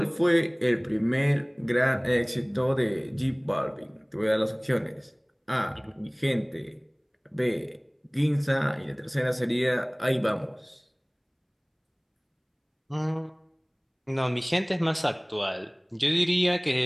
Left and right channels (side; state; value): both; identical; correlation 1.00